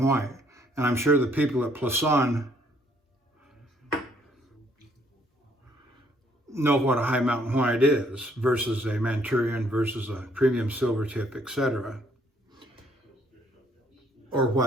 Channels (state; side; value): normal; both; correlation 0.66